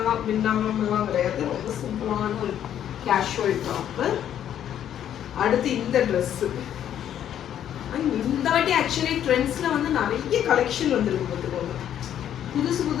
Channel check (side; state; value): right; quieter; 10.3 dB